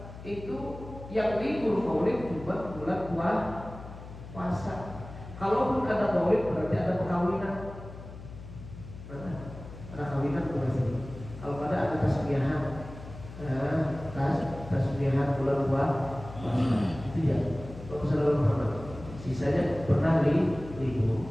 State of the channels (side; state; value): left; noise; hum, 14 dB below the sound